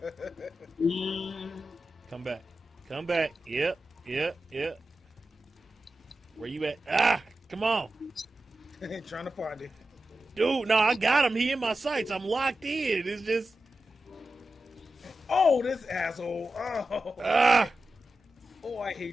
Come back. Yep. Where you at? Ah! Come on. Trying to find it. Dude, no, I got him. He in my sights. I'm locked in. It's just... Oh, this asshole. Oh. Ah! Oh, I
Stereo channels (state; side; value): normal; both; correlation 0.92